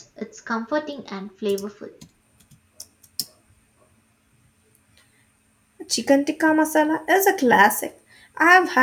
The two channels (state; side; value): identical; both; correlation 1.00